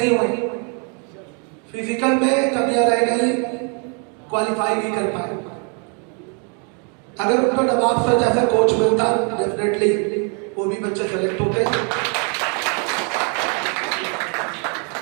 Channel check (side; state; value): left; quieter; 38.1 dB